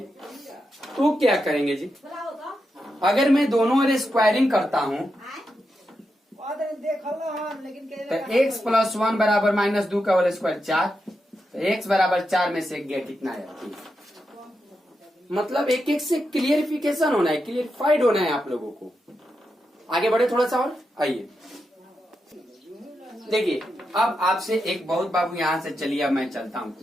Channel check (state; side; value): normal; both; correlation 0.86